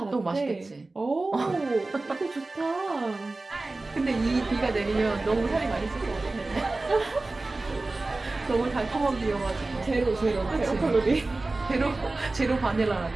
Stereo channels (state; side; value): quieter; left; 3.2 dB